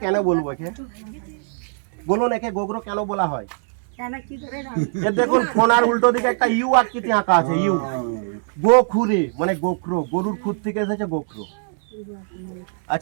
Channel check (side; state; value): left; silent; 64 dB below the other